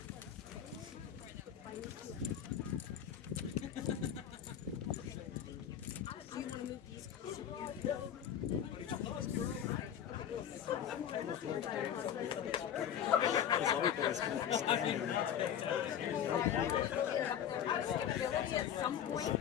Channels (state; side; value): quieter; right; 9.5 dB